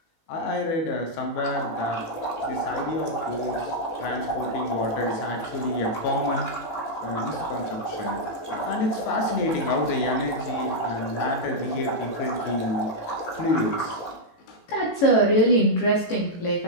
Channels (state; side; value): late; right; 18 ms